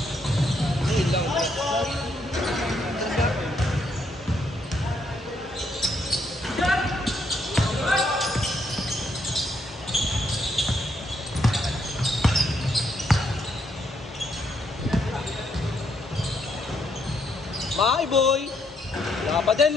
Ayun lang. Bye, boy! Wala pa din,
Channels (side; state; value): both; normal; correlation 0.74